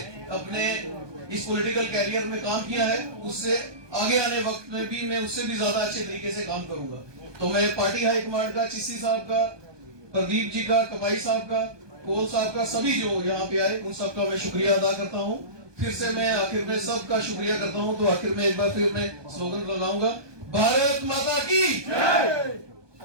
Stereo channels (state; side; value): late; left; 1.2 ms